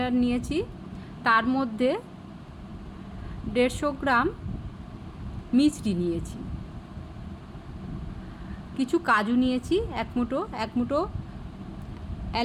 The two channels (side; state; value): both; identical; correlation 1.00